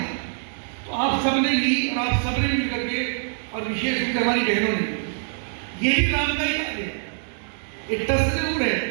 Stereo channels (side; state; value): left; silent; digital silence